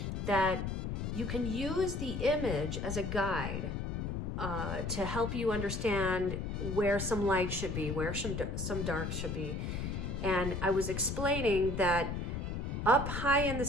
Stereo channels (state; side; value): noise; left; rumble, 3 dB below the sound